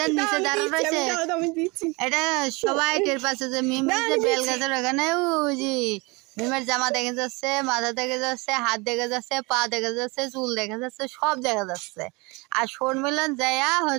নিচে দাঁড়া রয়েছে এটা সবাই টের পাচ্ছে যে মিম যে বেল গাছের ওখানে। ওই যে মিমের জামা দেখা যাচ্ছে, মাথা দেখা যাচ্ছে, হাত দেখা যাচ্ছে, পা দেখা যাচ্ছে, চুল দেখা যাচ্ছে, সব দেখা যাচ্ছে। আর শর্মিলন যাইয়া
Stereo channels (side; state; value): left; quieter; 26.4 dB